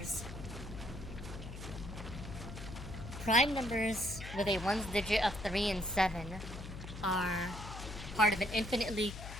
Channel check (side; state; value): left; noise; hum, 10 dB below the sound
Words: with a ones digit of 3 and 7 are part of an infinitely